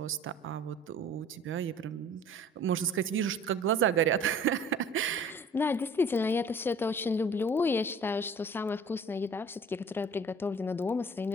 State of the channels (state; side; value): normal; both; correlation 0.49